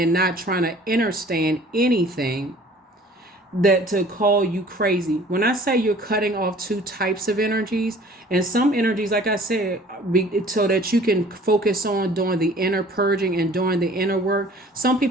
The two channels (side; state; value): both; normal; correlation 0.50